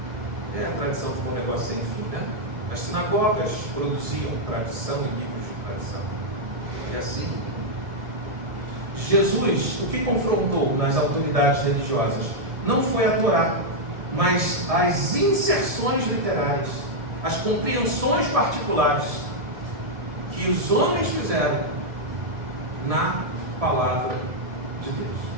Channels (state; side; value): late; left; 1.7 ms